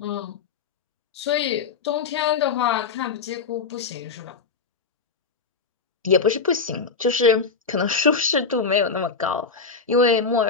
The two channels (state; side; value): quieter; right; 5.0 dB